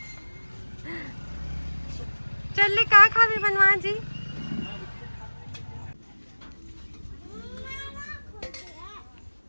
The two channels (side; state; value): both; inverted; correlation -1.00